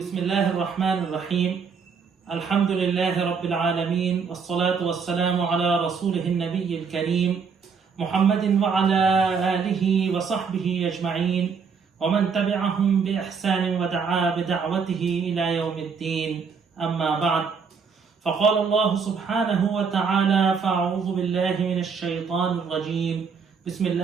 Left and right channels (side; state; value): left; quieter; 5.8 dB